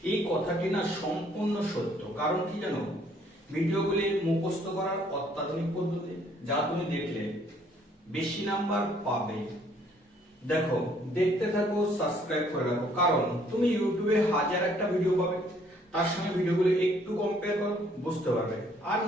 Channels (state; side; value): normal; both; correlation 0.63